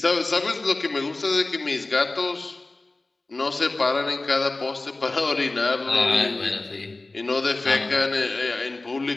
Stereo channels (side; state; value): right; quieter; 3.1 dB